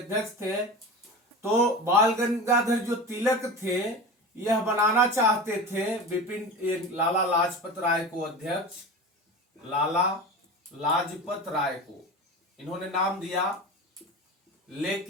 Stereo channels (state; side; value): normal; both; correlation 0.30